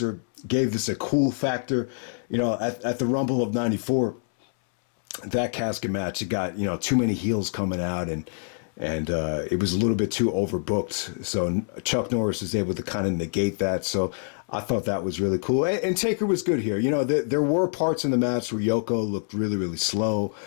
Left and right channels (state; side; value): silent; right; 61 dB below the other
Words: gave this a cool factor. You know, at the Rumble of 94, that casket match, it got, you know, too many heels coming out and it was a little bit too overbooked. So Chuck Norris was able to kind of negate that. So I thought that was really cool. And Taker was good here. You know, there were parts in the match where Yoko looked really, really slow